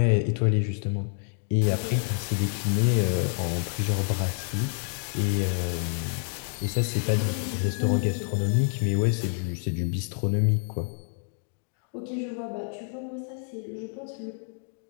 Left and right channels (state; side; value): silent; right; 60 dB below the other